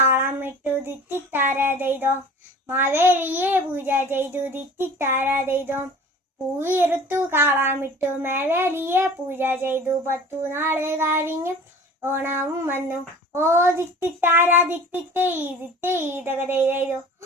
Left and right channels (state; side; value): normal; both; correlation 0.43